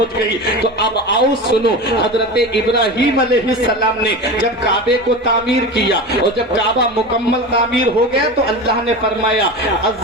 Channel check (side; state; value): both; normal; correlation 0.27